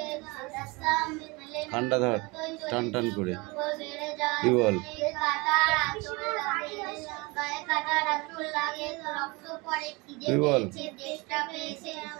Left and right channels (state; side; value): quieter; left; 25.9 dB